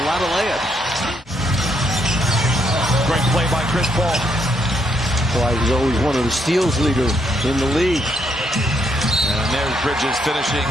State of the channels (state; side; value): normal; both; correlation 0.74